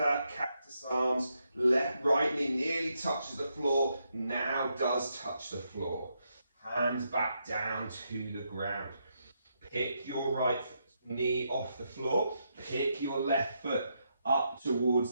cactus arms. Right knee nearly touches the floor. Now does touch the floor. Hands back down to the ground. Pick your right knee off the floor. Pick your left foot up towards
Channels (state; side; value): inverted; both; correlation -0.81